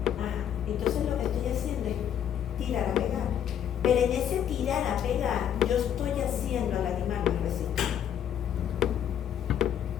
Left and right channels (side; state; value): right; quieter; 9.5 dB